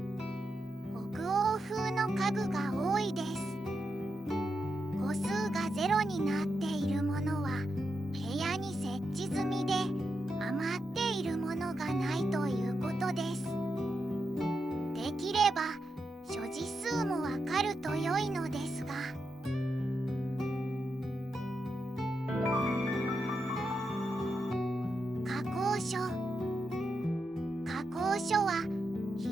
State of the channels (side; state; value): both; normal; correlation 0.86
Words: 北欧風の家具が多いです。個数がゼロになっているものは部屋に設置済みで、余っているものがないということです。できれば所持数もわかると良いのですが、加工所。加工所は拾